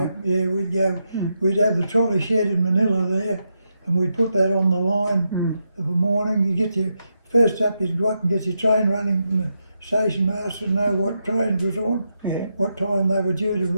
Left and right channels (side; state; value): both; inverted; correlation -0.84